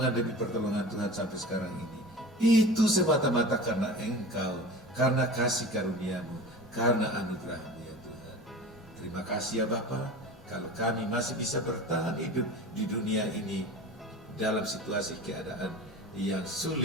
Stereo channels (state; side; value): normal; both; correlation 0.36